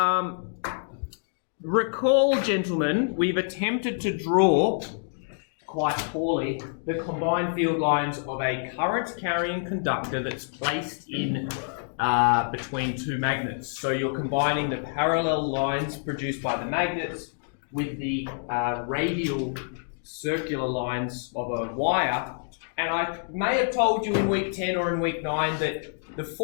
recall, gentlemen, we've attempted to draw quite poorly the combined field lines of a current carrying conductor that's placed in between 2 magnets. So you're combining the parallel lines produced by the magnets with the radial circular lines of a wire. And I may have told you in week 10 or in week 9 that the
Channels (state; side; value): silent; right; digital silence